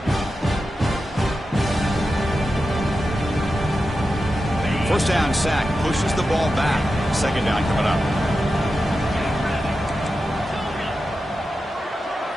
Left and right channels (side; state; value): both; normal; correlation 0.91